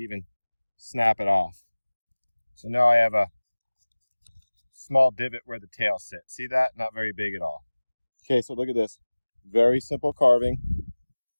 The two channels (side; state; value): both; inverted; correlation -1.00